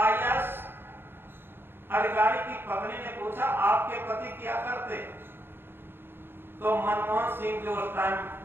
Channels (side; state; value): left; late; 0.10 ms